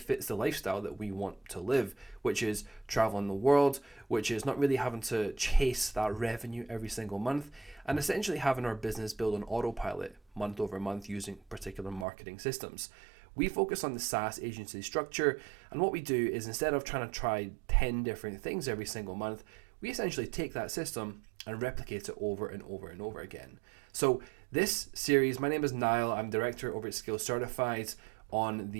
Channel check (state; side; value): drops out; left; at 12.1 s